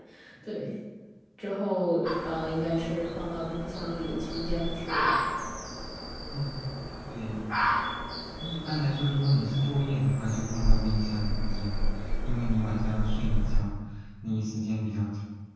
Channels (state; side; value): identical; both; correlation 1.00